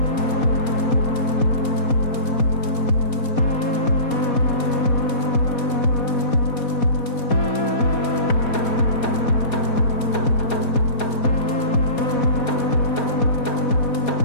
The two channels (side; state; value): right; late; 4.2 ms